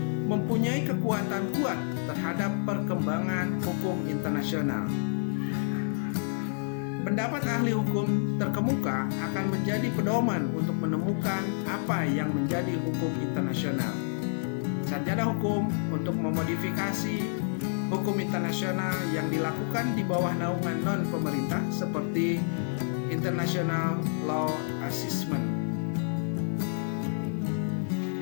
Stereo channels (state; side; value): silent; right; 58 dB below the other